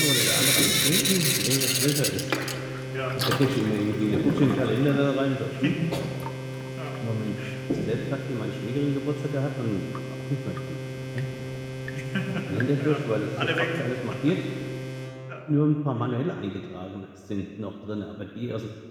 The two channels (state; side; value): identical; both; correlation 1.00